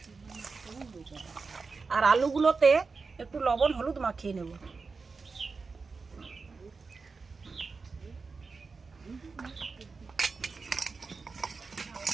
আর আলুগুলোতে একটু লবণ হলুদ মাখিয়ে নেব।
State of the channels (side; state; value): left; quieter; 4.5 dB